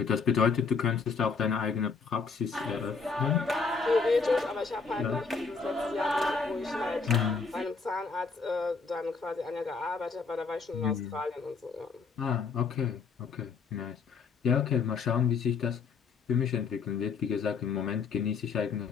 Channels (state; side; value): quieter; right; 5.1 dB